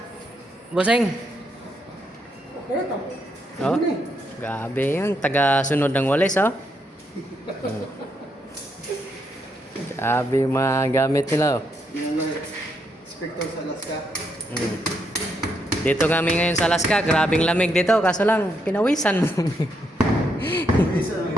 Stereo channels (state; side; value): normal; both; correlation 0.78